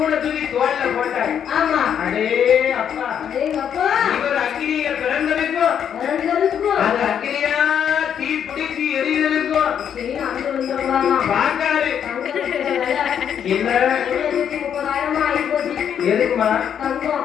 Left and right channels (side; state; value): right; quieter; 8.6 dB